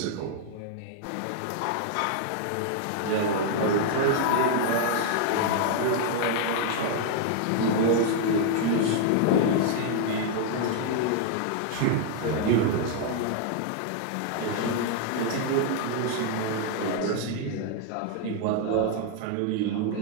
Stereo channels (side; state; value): both; different; correlation 0.00